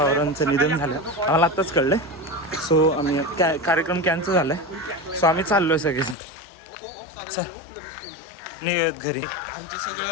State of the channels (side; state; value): right; drops out; at 6.2 s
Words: निधन झालं. आम्हाला आत्ताच कळलं. सो आम्ही कार्यक्रम कॅन्सल झालाय. सो आम्ही चाललोय सगळेजण. चल निघत घरी. आमचं